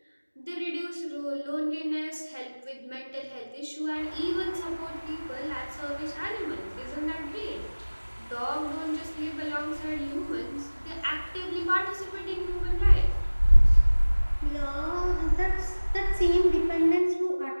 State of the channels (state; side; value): inverted; both; correlation -1.00